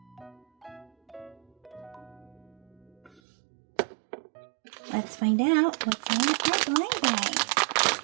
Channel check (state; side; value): drops out; left; at 3.2 s